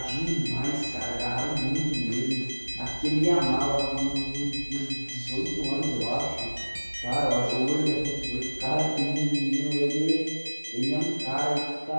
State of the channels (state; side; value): inverted; both; correlation -1.00